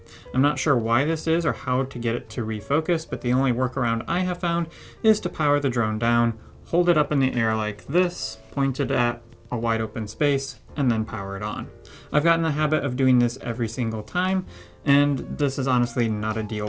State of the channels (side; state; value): both; identical; correlation 1.00